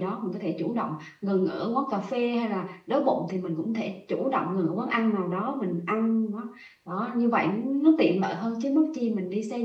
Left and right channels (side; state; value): both; identical; correlation 1.00